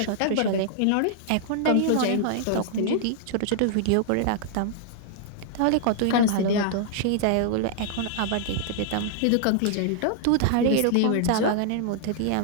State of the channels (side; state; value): both; different; correlation -0.01